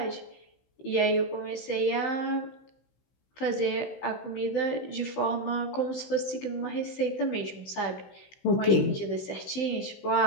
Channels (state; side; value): late; right; 16 ms